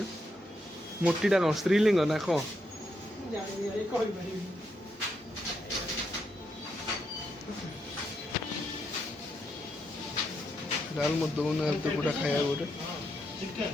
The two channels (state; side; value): normal; both; correlation 0.80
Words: मोटीटा कौन स्त्रीलिंग ना कौन डाल मत दो ना तो पूरा खाया गोटे